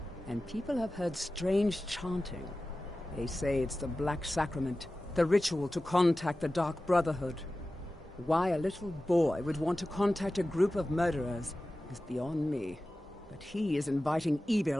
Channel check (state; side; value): normal; both; correlation 0.95